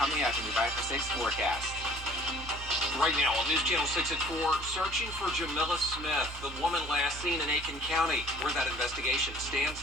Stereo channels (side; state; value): both; normal; correlation 0.52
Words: up in the 5 for 6 forecast. Right now on News Channel 6 at 4, searching for Jamila Smith, the woman last seen in Aiken County, where that investigation